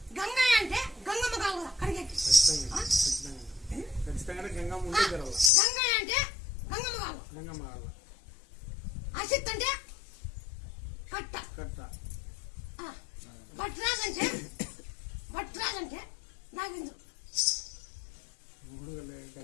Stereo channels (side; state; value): right; drops out; at 5.5 s